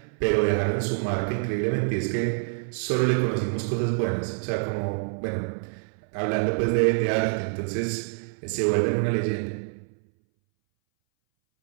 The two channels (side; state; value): left; silent; 61 dB below the other